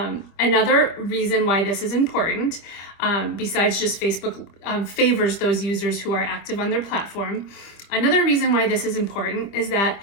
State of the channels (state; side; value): late; right; 25 ms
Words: reason why this is important, besides just Facebook favors those users who are active on their platform, another reason why this is important is that